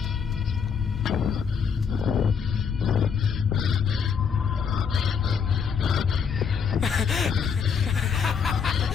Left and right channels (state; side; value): quieter; right; 6.5 dB